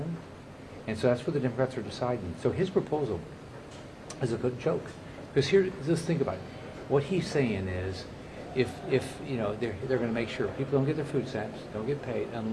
And so that's what the Democrats are deciding. So his proposal is a good joke. Because just think about it. What he's saying is, if they're going to make sure people don't get their food stamps, don't get paid,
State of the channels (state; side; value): identical; both; correlation 1.00